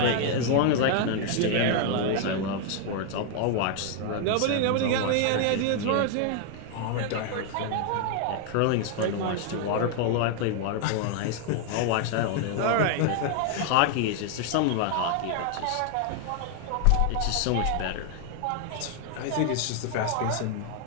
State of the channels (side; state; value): both; different; correlation 0.00